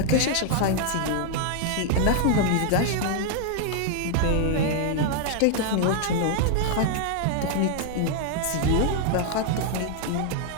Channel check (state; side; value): different; both; correlation 0.00